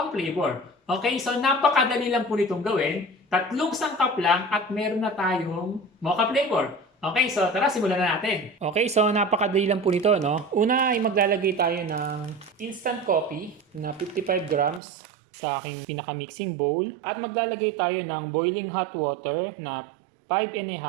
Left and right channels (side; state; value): left; drops out; at 14.8 s